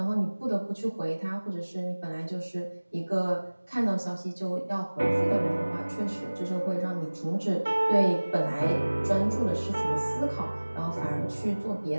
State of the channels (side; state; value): both; inverted; correlation -1.00